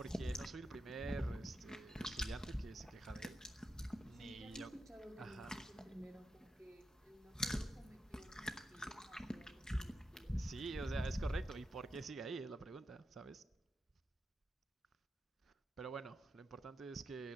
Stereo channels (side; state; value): both; normal; correlation 0.87